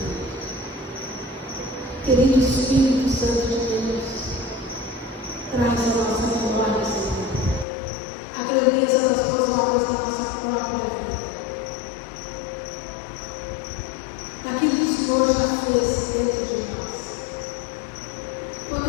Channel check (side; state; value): right; drops out; at 7.7 s